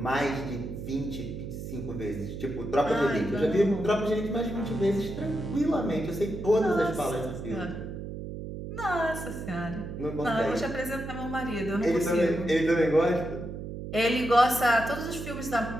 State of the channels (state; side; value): noise; right; hum, 8 dB below the sound